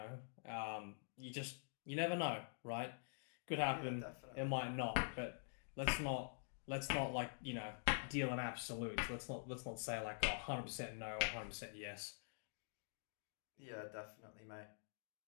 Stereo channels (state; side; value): silent; right; digital silence